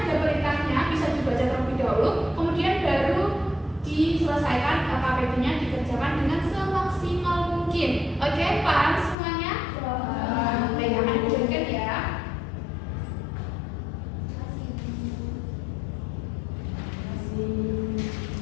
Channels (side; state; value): right; drops out; at 9.2 s